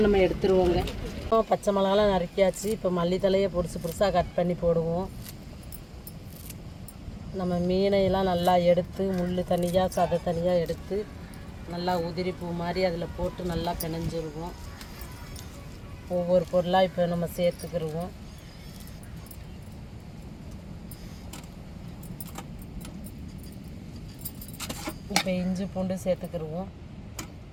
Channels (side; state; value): both; identical; correlation 1.00